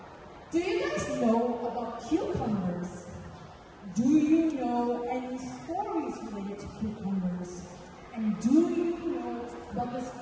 Do you guys know about cucumbers? Do you know any stories related to cucumbers? And do you know about this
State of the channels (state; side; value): identical; both; correlation 1.00